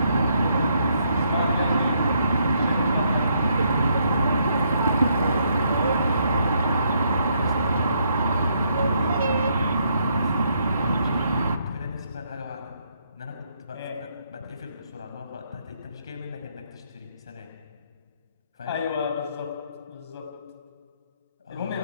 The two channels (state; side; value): inverted; both; correlation -0.73